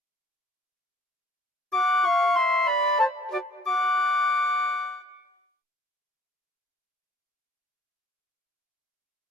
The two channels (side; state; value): both; normal; correlation 0.58